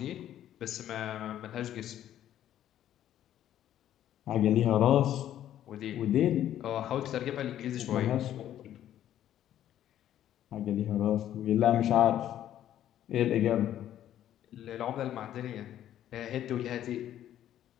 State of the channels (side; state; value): right; quieter; 11.6 dB